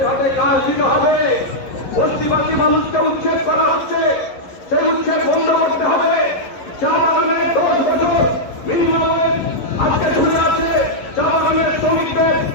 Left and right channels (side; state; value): right; late; 11 ms